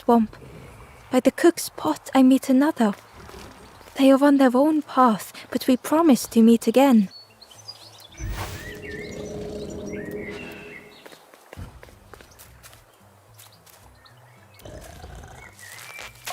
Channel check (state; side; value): identical; both; correlation 1.00